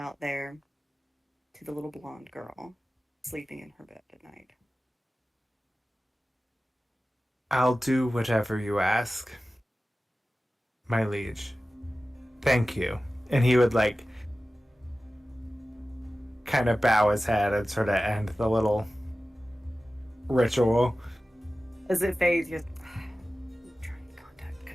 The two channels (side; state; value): both; normal; correlation 0.95